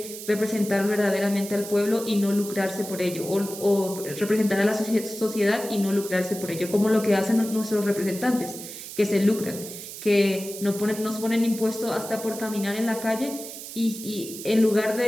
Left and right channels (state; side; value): noise; right; hiss, 11 dB below the sound